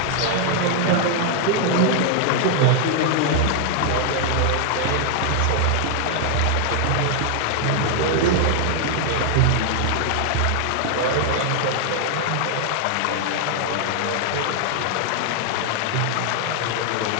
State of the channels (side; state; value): both; different; correlation 0.00